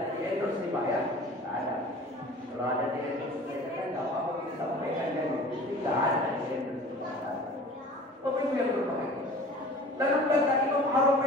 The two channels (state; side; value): normal; both; correlation 0.43